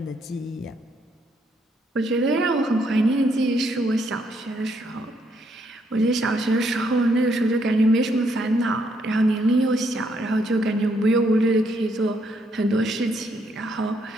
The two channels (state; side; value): normal; both; correlation 0.73